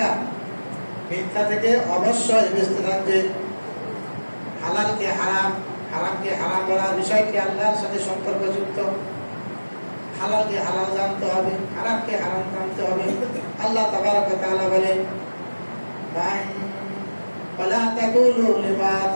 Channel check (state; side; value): inverted; both; correlation -1.00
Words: মিথ্যা থেকে অবশ্যই বেঁচে থাকবে। হালালকে হারাম, হারামকে হারাম বলার বিষয়টি আল্লাহর সাথে সম্পর্কযুক্ত। হালালকে হালাল জানতে হবে, হারামকে হারাম জানতে হবে। আল্লাহ তাবারক ওয়া তাআলা বলেন, ولا تقولوا لما